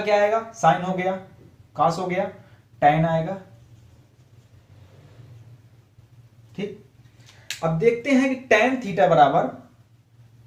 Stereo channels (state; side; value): identical; both; correlation 1.00